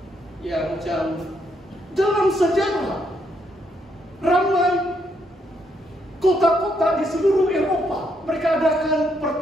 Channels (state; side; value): normal; both; correlation 0.75